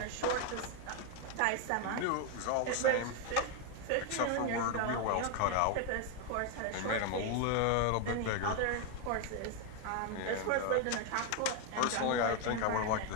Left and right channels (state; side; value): different; both; correlation 0.01